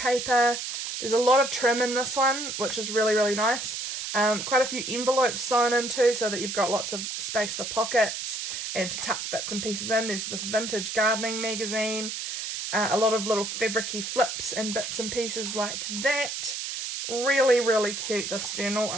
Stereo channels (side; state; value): right; noise; hiss, 5 dB below the sound